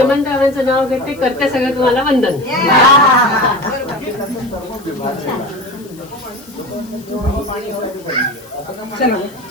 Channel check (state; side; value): noise; left; hiss, 24 dB below the sound